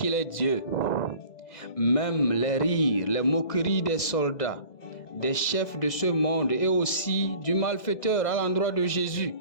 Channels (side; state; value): right; late; 2.0 ms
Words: est Dieu. Même les rires, les moqueries des soldats, des chefs de ce monde et aussi du malfaiteur à l'endroit de Jésus